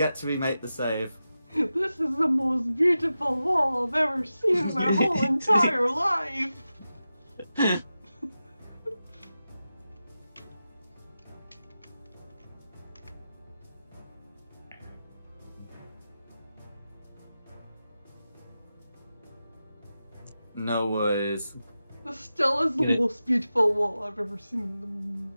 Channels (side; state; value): both; inverted; correlation -0.92